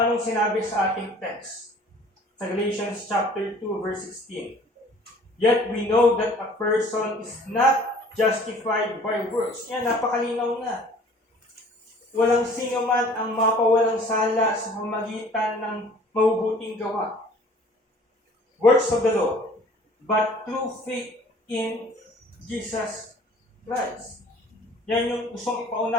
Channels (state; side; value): normal; both; correlation 0.51